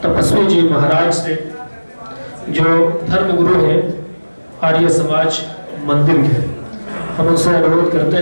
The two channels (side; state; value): both; inverted; correlation -1.00